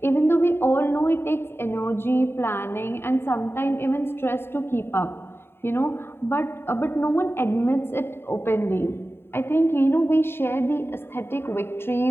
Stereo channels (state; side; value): late; right; 0.11 ms